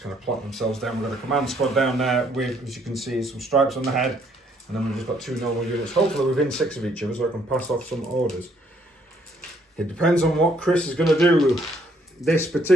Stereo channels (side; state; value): both; normal; correlation 0.67